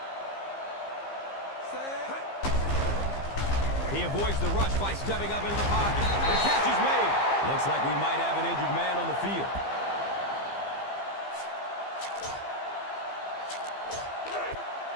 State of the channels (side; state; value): right; late; 15 ms